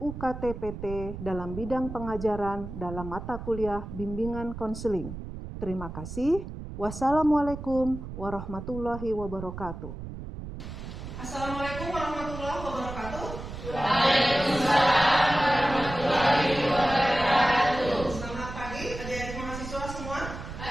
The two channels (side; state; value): right; noise; rumble, 9 dB below the sound